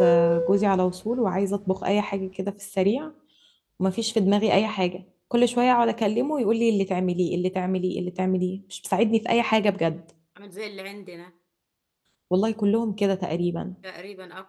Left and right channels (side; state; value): both; identical; correlation 1.00